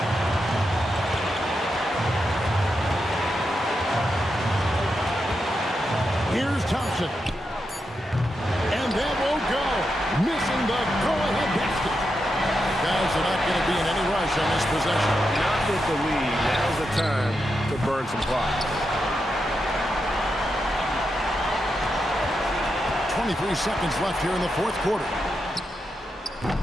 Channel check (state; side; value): normal; both; correlation 0.86